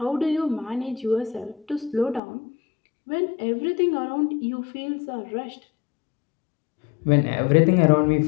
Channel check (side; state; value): right; drops out; at 2.2 s